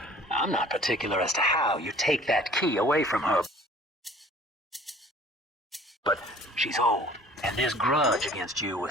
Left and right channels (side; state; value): both; normal; correlation 0.50